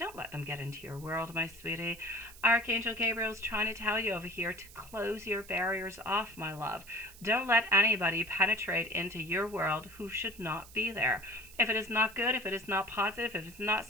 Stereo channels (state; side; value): noise; right; hiss, 20 dB below the sound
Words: let them get into your world, my sweetie. Archangel Gabriel's trying to tell you over here to close your barriers off, my love. Don't let anybody penetrate into your world who should not be there. If it is not good, if it is not positive, if it's not